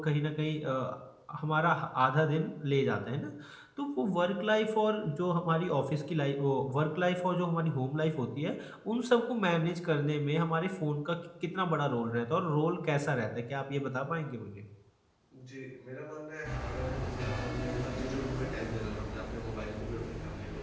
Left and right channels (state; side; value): identical; both; correlation 1.00